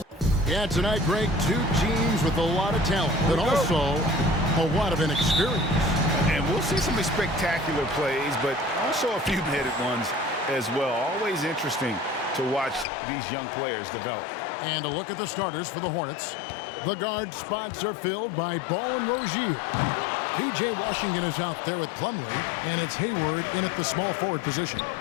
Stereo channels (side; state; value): right; drops out; at 12.9 s